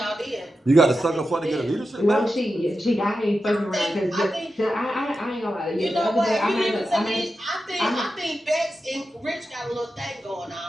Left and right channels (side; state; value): both; normal; correlation 0.91